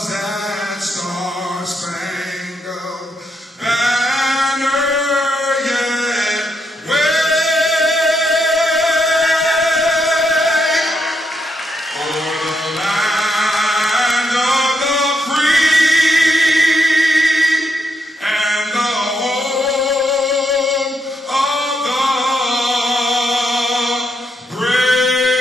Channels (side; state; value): both; normal; correlation 0.79